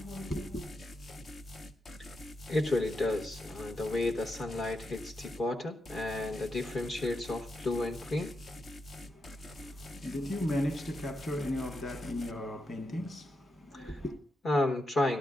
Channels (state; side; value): normal; both; correlation 0.85